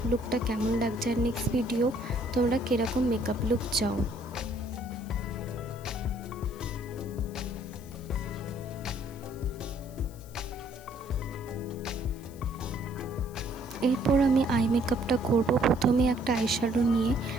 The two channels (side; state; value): left; noise; hiss, 23 dB below the sound